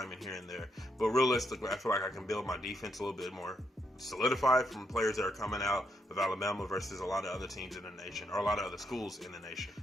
here and there. But realistically, I feel like I can build my defense a little bit more solidified from players that are coming out of Alabama versus a lot of other teams in the nation, or a lot of other schools in the nation.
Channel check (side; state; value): both; normal; correlation 0.78